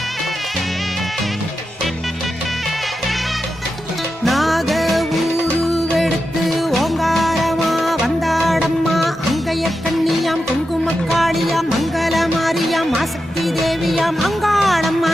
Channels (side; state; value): both; normal; correlation 0.89